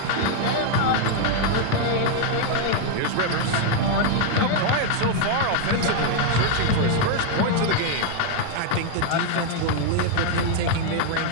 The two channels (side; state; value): both; different; correlation 0.00